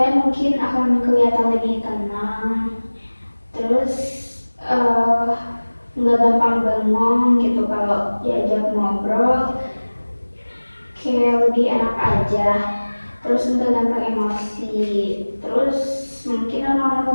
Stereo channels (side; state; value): both; inverted; correlation -1.00